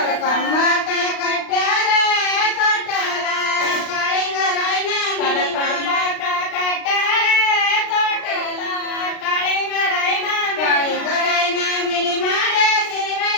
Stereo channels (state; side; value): late; right; 36 ms